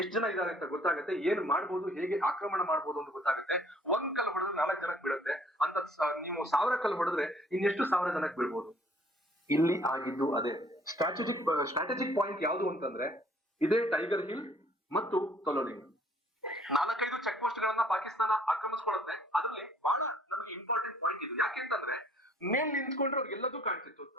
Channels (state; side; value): normal; both; correlation 0.59